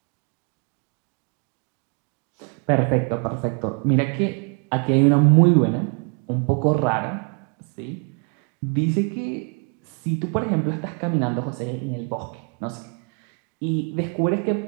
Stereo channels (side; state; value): left; quieter; 37.4 dB